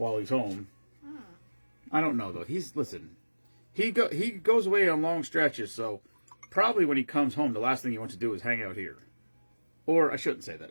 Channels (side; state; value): both; inverted; correlation -1.00